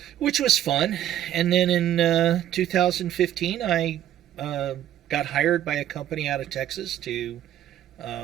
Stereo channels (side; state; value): left; quieter; 11.8 dB